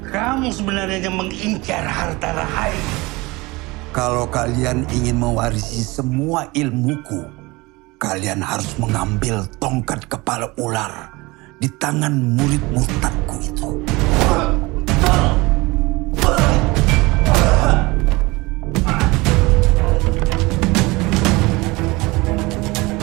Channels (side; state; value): left; quieter; 23.0 dB